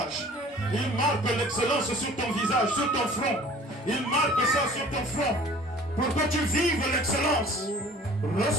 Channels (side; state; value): both; normal; correlation 0.49